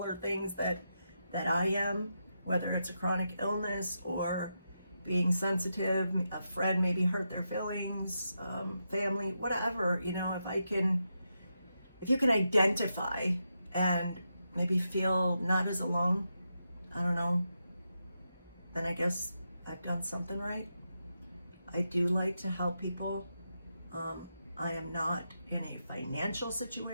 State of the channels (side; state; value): both; inverted; correlation -0.85